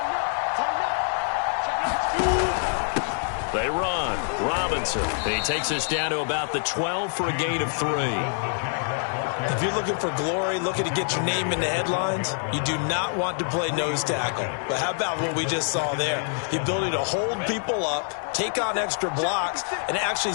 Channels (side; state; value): right; silent; digital silence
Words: They run. Robinson. He takes us down to about the 12 for a gain of 3. If you're looking for glory, looking to get your name in the headlines, you do not want to play nose tackle. But how about what we just saw there? The ability to hold people up, take on extra blocks, and actually